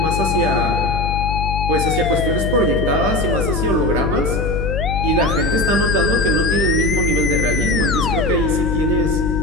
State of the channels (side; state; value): left; noise; hum, 2 dB below the sound